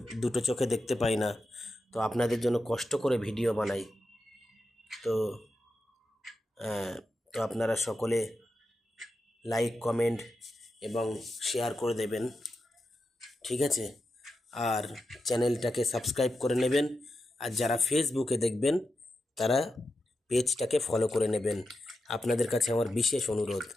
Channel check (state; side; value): normal; both; correlation 0.89